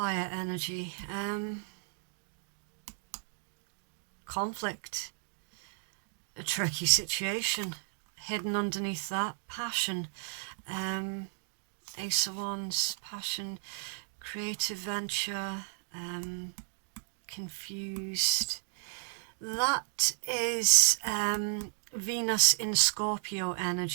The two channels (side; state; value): left; silent; digital silence